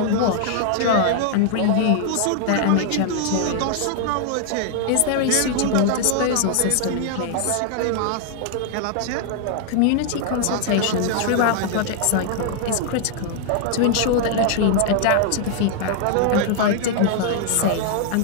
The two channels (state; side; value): different; both; correlation 0.00